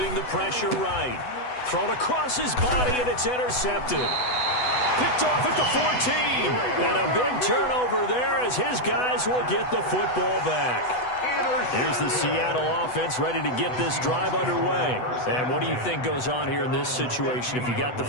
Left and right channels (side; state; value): right; late; 8.1 ms